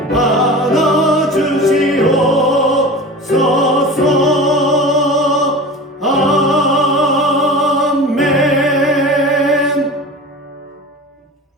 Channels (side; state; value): both; normal; correlation 0.34